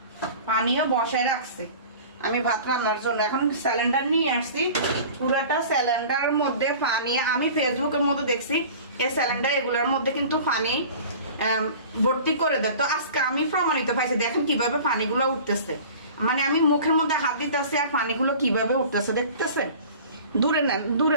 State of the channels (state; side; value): inverted; both; correlation -0.42